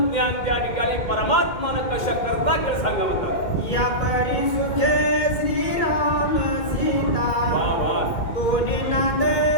ज्ञान त्या ठिकाणी परमात्मानं कशा करता केलं सांगा म्हणतात. या परी सुखे श्रीराम सीता दोन्ही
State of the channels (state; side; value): late; right; 2.1 ms